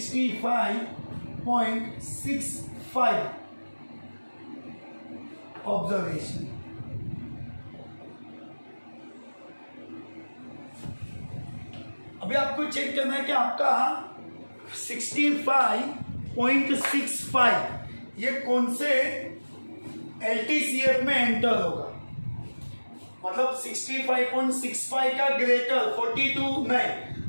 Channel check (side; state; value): both; inverted; correlation -1.00